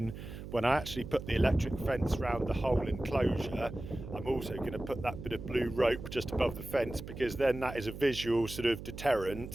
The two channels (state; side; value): noise; right; hum, 10 dB below the sound